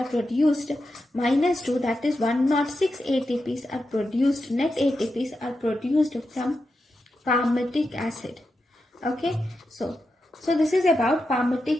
produced minus 2, that is 106 ATPs are produced, net ATPs are produced from palmitic acid. Okay, so this is about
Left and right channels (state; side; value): normal; both; correlation 0.88